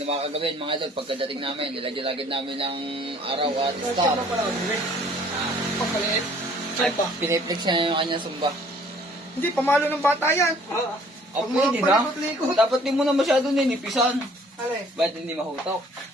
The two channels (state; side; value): normal; both; correlation 0.57